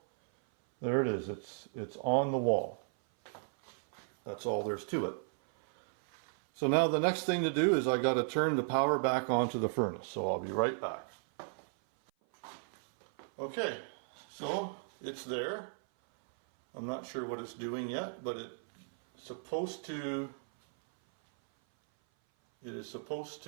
there it is. It's on the wall. That's all there's to it. So now the next thing to do is I got to turn the power back onto the furnace. So I'll be right back. Okay, so it's there. I'm not sure what it's doing yet, but it is supposed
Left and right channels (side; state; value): left; silent; 54 dB below the other